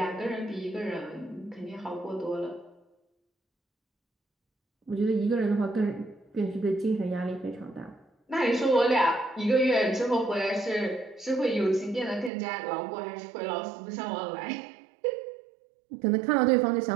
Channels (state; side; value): drops out; left; at 12.3 s